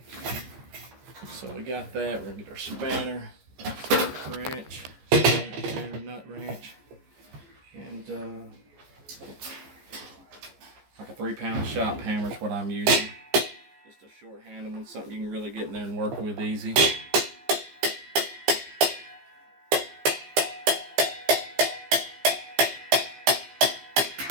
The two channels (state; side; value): late; left; 14 ms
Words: So we got that. We're gonna get our spanner wrench, spanner nut wrench, and like a 3-pound shop hammer is what I'm using. Just a short-handed one, something you can really get in there and work with easy.